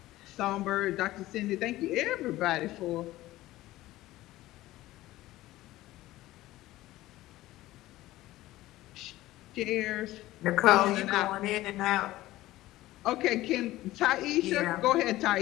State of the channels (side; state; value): right; quieter; 16.5 dB